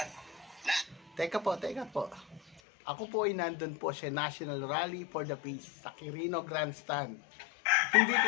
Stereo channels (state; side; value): drops out; right; at 2.6 s